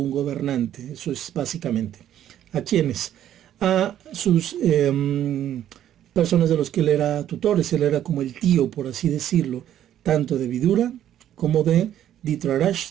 gobernante. Eso es básicamente. ¿A quiénes? A sus personas de los que él era tutores. Él era como el tío, por así decirlo, tanto de Vidura como de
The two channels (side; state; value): left; quieter; 11.2 dB